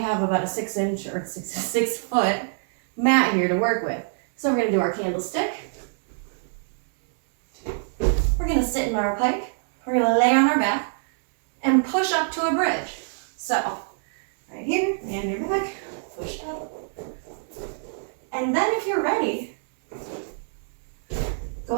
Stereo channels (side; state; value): left; silent; digital silence